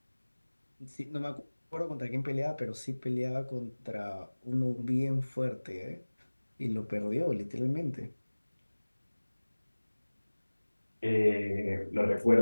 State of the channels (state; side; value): inverted; both; correlation -1.00